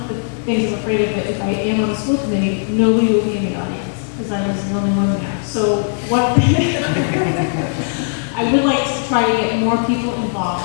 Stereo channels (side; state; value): right; silent; digital silence